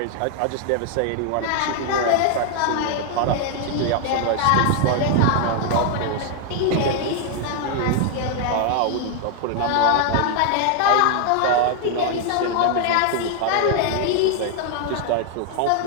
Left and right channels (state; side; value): different; both; correlation 0.00